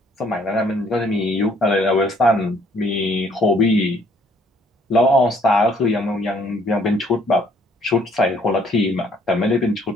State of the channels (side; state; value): both; normal; correlation 0.63